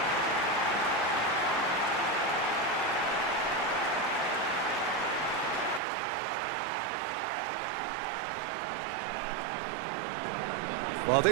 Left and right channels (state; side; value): drops out; left; at 5.8 s